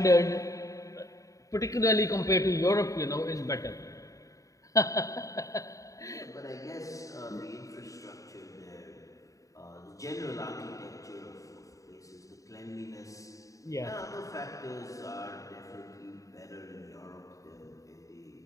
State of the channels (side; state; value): right; late; 0.16 ms